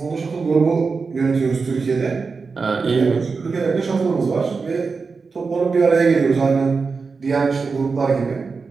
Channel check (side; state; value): left; quieter; 4.7 dB